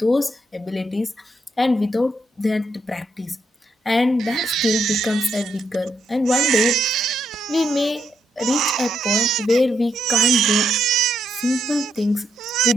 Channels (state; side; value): normal; both; correlation 0.78